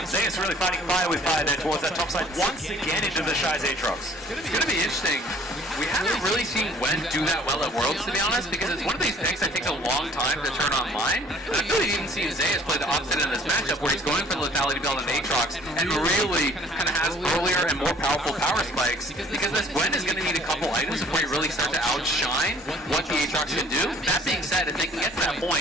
Zeus really fighting fire with fire there towards that top side once again into the Shy's Aatrox. It's going to be interesting. We haven't really seen Gwen do that well at Worlds, to be honest, because it's one of these picks that takes a long time to turn online. And I feel like even seen Zeus play the opposite in this matchup, where he's going for the lethality build on Aatrox and really kind of has earlier and more powerful power spikes, because this Gwen is going to need a couple items before you really start to outshine what the Aatrox can do. That being said, if they can get to that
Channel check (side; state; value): both; normal; correlation 0.55